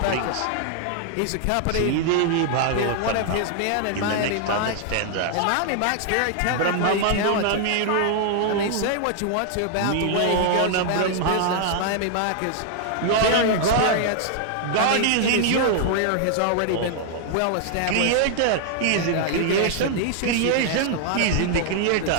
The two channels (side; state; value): both; different; correlation 0.00